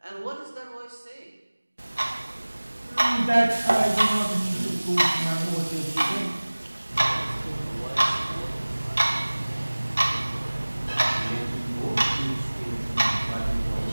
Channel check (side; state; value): both; inverted; correlation -1.00